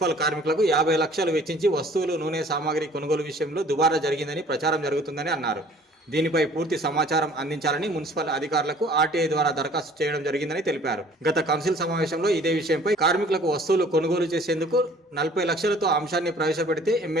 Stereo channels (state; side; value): normal; both; correlation 0.53